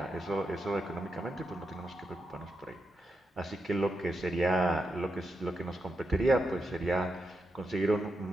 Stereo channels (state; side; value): normal; both; correlation 0.85